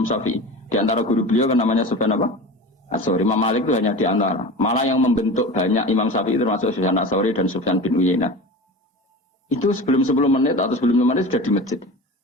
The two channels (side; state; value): both; normal; correlation 0.32